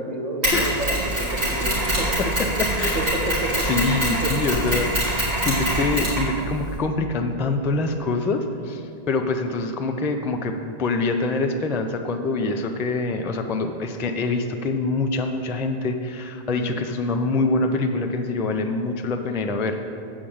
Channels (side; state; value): left; late; 1.9 ms